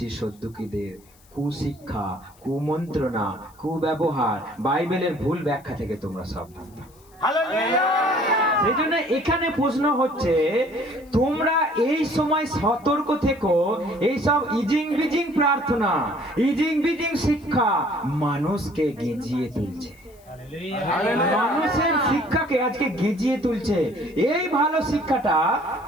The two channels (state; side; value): noise; left; hiss, 29 dB below the sound